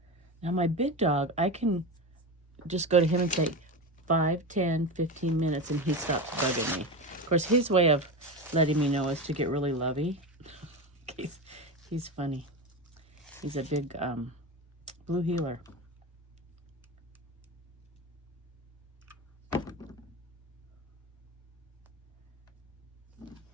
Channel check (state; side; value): normal; both; correlation 0.22